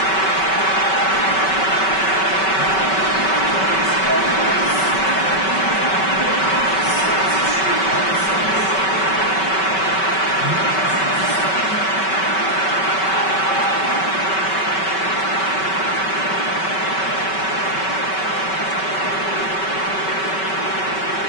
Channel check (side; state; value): right; late; 5.2 ms